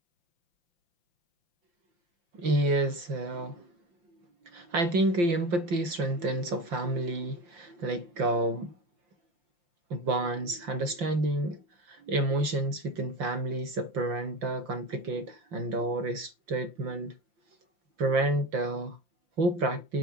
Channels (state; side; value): late; left; 5.7 ms